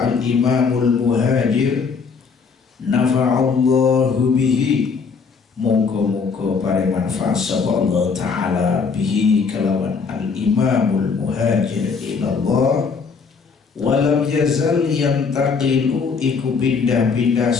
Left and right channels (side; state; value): right; quieter; 5.3 dB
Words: al-Imamul Muhajir nafa'allahu bihi, moga-moga paring manfaat sapa Allah taala bihi kelawan al-Imamul Muhajir ilallah. Walam yazal yantaqilu iku pindah-pindah